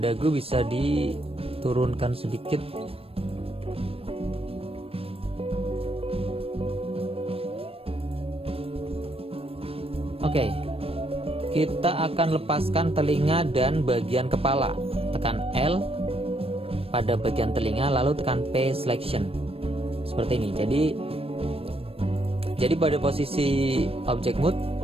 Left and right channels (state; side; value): late; left; 0.28 ms